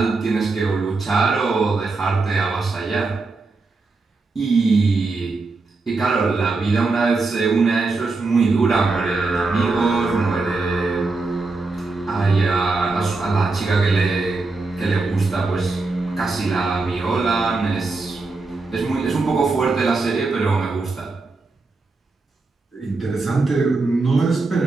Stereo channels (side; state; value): left; quieter; 3.7 dB